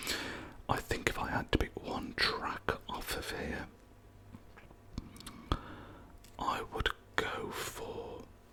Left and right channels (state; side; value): identical; both; correlation 1.00